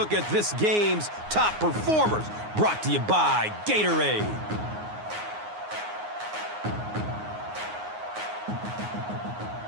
at this game's top performers, brought to you by Gatorade.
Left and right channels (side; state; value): left; late; 9.6 ms